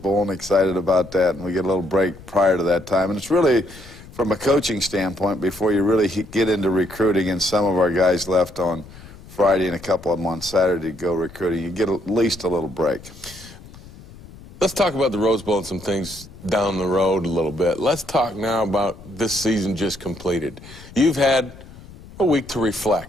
and excited about that, and we get a little break prior to that time. And it's really, from a coaching standpoint, before you really get into recruiting, and some of our guys left on Friday and a couple of them on Saturday to go recruiting, you get at least a little break. Let's talk about the Rose Bowl and some things down the road a little bit. Let's talk now about this season just completed. You've had a week to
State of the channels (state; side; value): noise; left; rumble, 19 dB below the sound